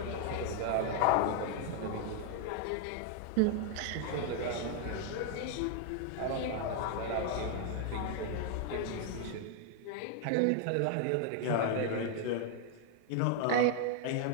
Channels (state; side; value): different; both; correlation 0.00